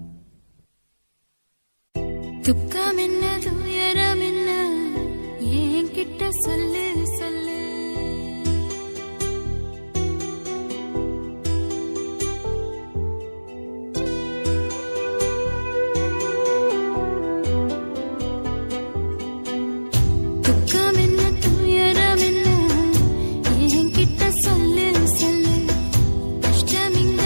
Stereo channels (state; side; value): inverted; both; correlation -1.00